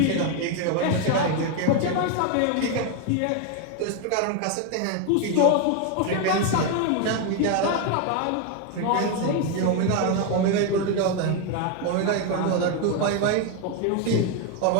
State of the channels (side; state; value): both; different; correlation 0.01